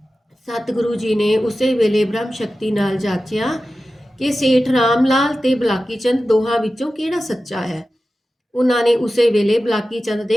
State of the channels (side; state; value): both; normal; correlation 0.94